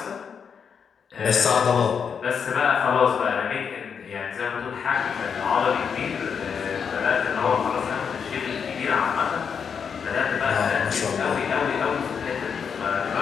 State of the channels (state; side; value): quieter; right; 6.7 dB